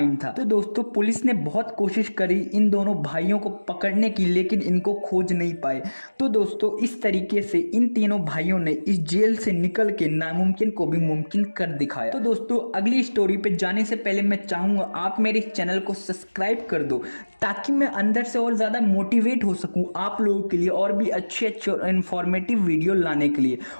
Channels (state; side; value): inverted; both; correlation -1.00